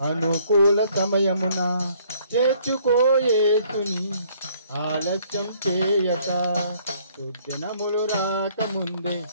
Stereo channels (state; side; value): inverted; both; correlation -0.62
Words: అనుకూల సమయమున, చేర్చుకోయేసుని ఆలస్యం చేయక. దుర్దినములు రాకముందే